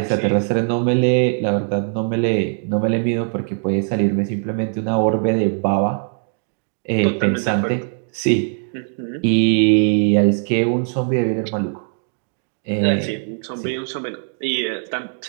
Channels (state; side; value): silent; left; 66 dB below the other